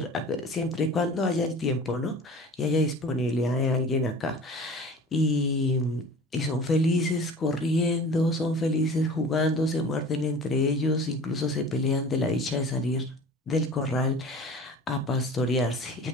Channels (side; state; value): both; normal; correlation 0.41